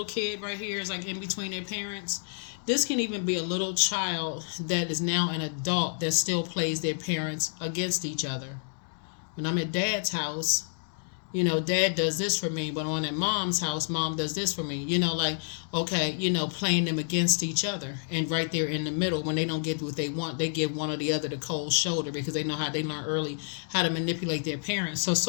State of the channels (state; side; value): silent; right; digital silence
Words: kid right here is like in between their parents? This can even be a little child that is now an adult that still plays their parents against each other. When I'm at dad's house, dad does this for me, but when I'm at mom's house, mom does this for me. Like, okay, playing them against each other. And right there in the middle, when they don't get what they want, they give one or the other the cold shoulder, because they know how they learn early how to manipulate their parents. So